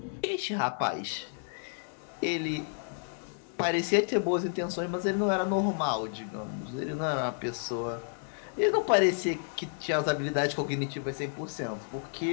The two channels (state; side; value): silent; right; digital silence